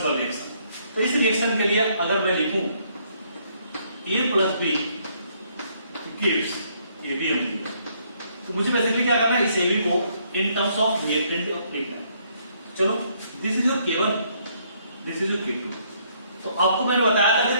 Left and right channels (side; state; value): both; inverted; correlation -0.69